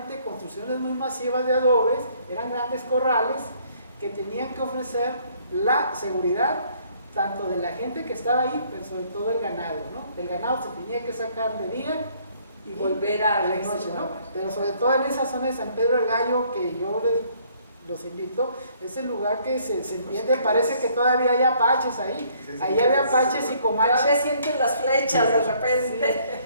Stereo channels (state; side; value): inverted; both; correlation -0.63